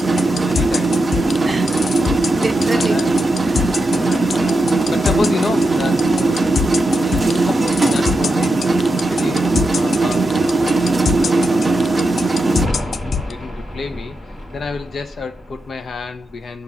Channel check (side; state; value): both; normal; correlation 0.87